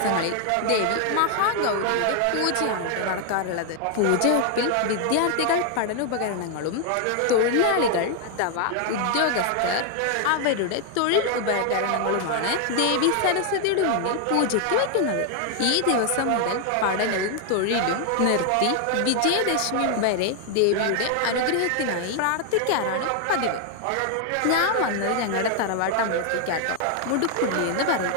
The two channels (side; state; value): both; different; correlation 0.00